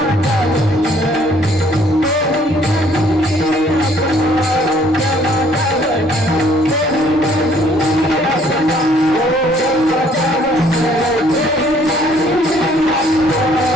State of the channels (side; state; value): both; normal; correlation 0.61